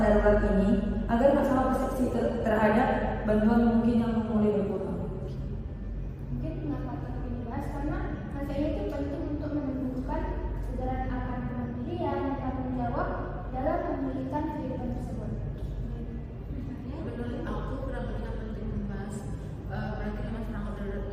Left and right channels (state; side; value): identical; both; correlation 1.00